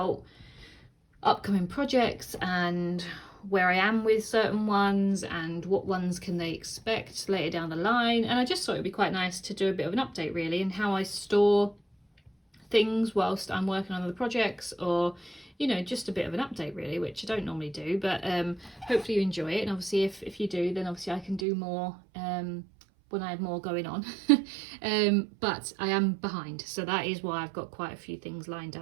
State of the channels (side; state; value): left; drops out; at 21.5 s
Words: upcoming projects and where I am with certain ones and what ones can they expect later down the line, and I just thought it'd be quite nice to do a bit of an update really and how I store things whilst I'm working on other projects, or just a bit of an update really, which I don't normally do, but hopefully you enjoy it. And obviously if you do, then obviously I can do more when I have more going on. But I am behind, so that is why I've got quite a few things lined